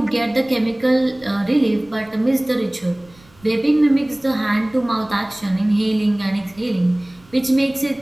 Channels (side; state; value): right; noise; rumble, 28 dB below the sound